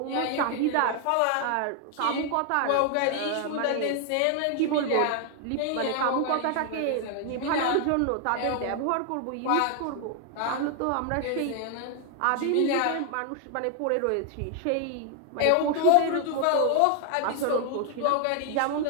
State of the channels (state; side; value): different; both; correlation 0.00